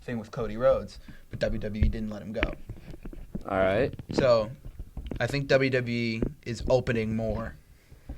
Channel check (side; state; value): both; identical; correlation 1.00